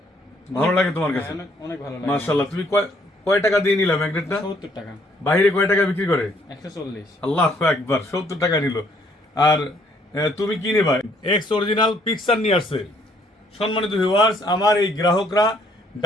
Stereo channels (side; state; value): both; normal; correlation 0.65